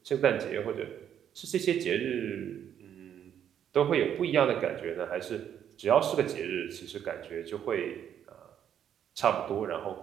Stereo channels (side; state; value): left; quieter; 9.5 dB